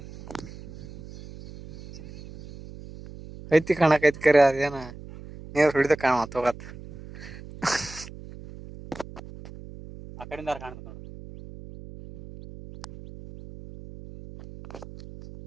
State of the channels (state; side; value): noise; right; hum, 16 dB below the sound